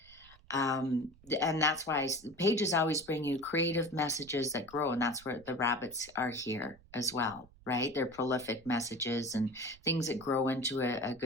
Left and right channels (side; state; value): right; noise; rumble, 24 dB below the sound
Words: And that's why pages always bring you creative messages that grow. And that's where the rabbits are here as well, right? They're prolific messages and things that grow into a